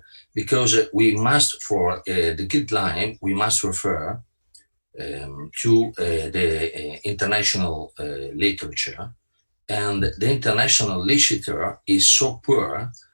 because we must, for the guideline, we must refer to the international literature, and the international literature is so poor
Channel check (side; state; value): both; inverted; correlation -1.00